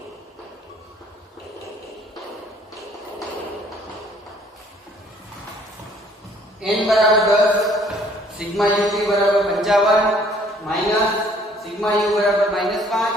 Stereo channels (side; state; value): both; normal; correlation 0.59